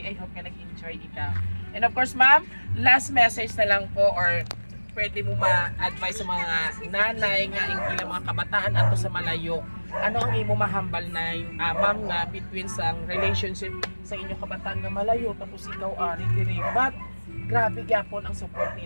I hope ka nag-enjoy ikaw. And of course ma'am, last message na lang po or pwede mo ma-advise sa mga nanay nga ilang mga kabataan ato sa malayo. Ano ang imo mahambal na ma'am nga between sa relationship sa inyong kabataan nga malayo tapos ikaw ari diri, but grabe gyapon ang support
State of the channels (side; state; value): both; inverted; correlation -1.00